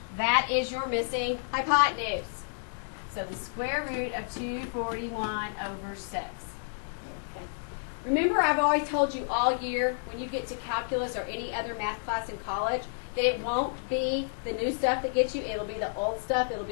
That is your missing hypotenuse. So the square root of 241 over 6. Okay. Remember, I've always told you all year when you get to calculus or any other math class in college that it won't be the new stuff that gets you. It'll be the old stuff. It'll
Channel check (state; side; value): silent; right; digital silence